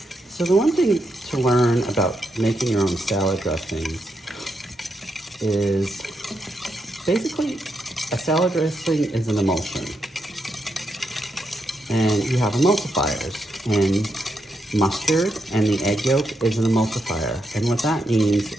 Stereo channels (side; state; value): both; normal; correlation 0.82